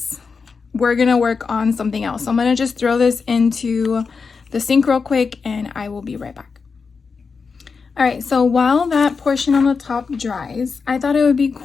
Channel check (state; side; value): quieter; right; 5.1 dB